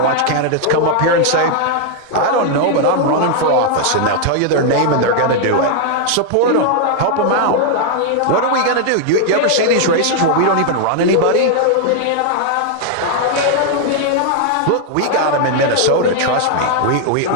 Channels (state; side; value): different; both; correlation 0.00